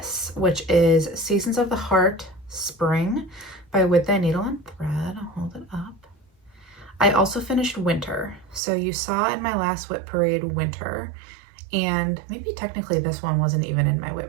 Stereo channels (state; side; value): drops out; left; at 8.6 s